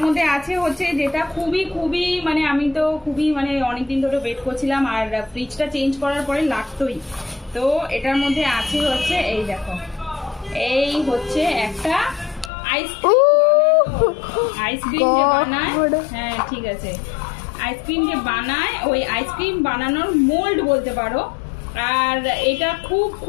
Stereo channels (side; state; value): right; drops out; at 12.5 s